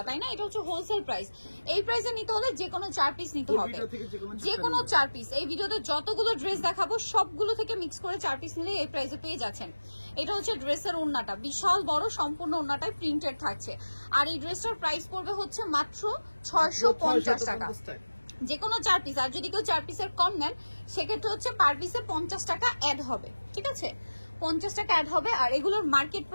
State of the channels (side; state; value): both; inverted; correlation -1.00